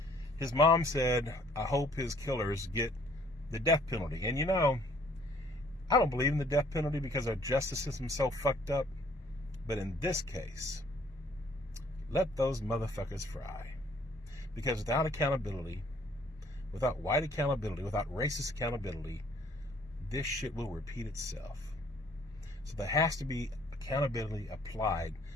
his mom said, I hope his killers get the death penalty. And I don't believe in the death penalty because our justice system's so fucked up. But in this case, let those motherfuckers fry. Because without accountability, without white accountability, without racist accountability, this shit will repeat itself. So there has to be accountability applied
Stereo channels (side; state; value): both; normal; correlation 0.60